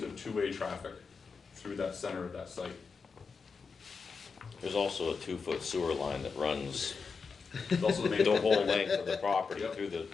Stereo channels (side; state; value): right; quieter; 5.0 dB